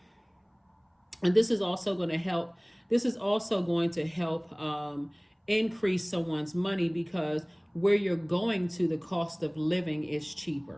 this is also going to help. This is also going to help increase someone's money, because where you're going to, the cost of living is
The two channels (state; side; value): identical; both; correlation 1.00